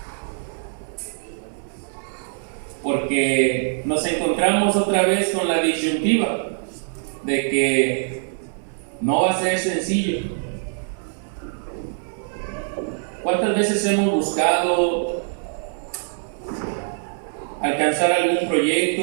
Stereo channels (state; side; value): silent; left; digital silence